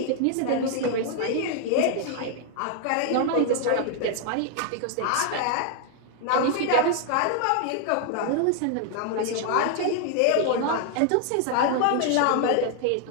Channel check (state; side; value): different; both; correlation 0.00